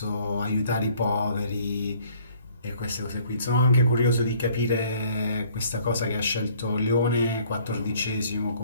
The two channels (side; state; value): both; inverted; correlation -0.58